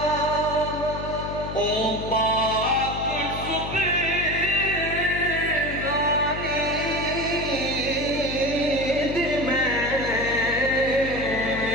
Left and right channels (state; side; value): noise; left; hum, 8 dB below the sound